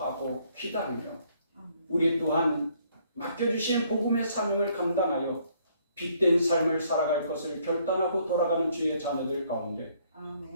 기다리며 우리 또한 맡겨주신 복음의 사명을 감당하여 빛된 삶을 살아갈 것을 결단하고 돌아가는 주의 자녀들 가운데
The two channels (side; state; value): both; inverted; correlation -0.66